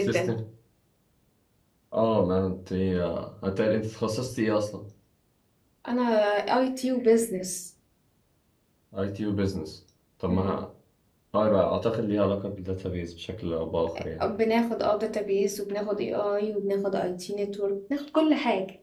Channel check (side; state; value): both; identical; correlation 1.00